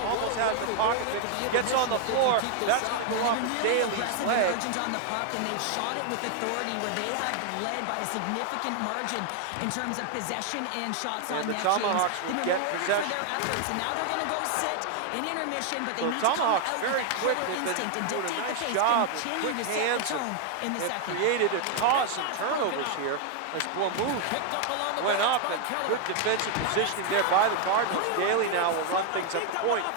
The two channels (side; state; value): both; different; correlation 0.00